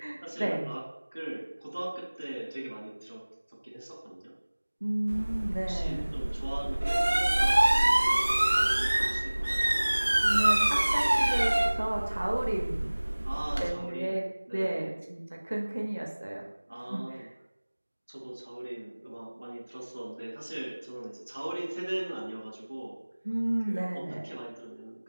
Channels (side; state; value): both; inverted; correlation -1.00